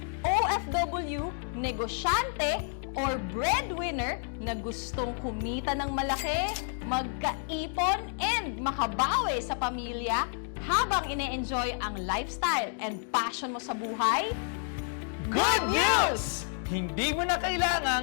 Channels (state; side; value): silent; right; 58 dB below the other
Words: OFW, negosyante, or breadwinner na gustong kumita ng malaki, magkaipon, and makabawi sa pamilya habang ine-enjoy ang lifestyle and passion mo sa buhay? Good news! Hindi mo na